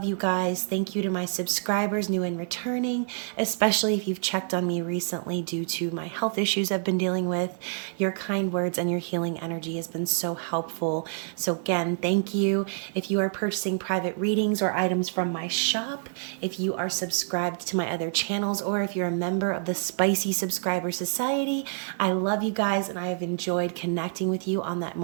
you guys. Thank you to my subscribers, new and returning, especially if you've checked on me recently due to my health issues I've been dealing with. Your kind words and your healing energy has been so helpful. So, again, thank you. If you are purchasing private readings or items from my shop, if you are subscribed to my other channels, or if you're a member of the Spicy Subscriber Society, I love you guys and I have enjoyed connecting with you on that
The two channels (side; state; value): left; silent; digital silence